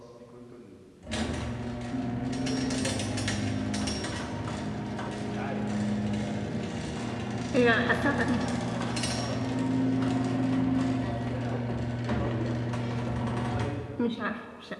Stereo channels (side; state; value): both; identical; correlation 1.00